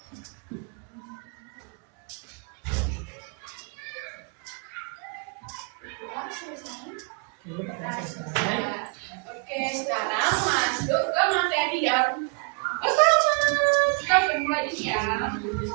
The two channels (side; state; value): left; quieter; 36.7 dB